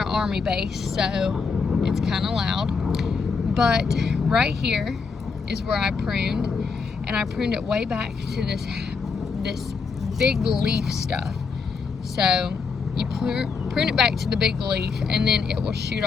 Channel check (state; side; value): quieter; right; 5.0 dB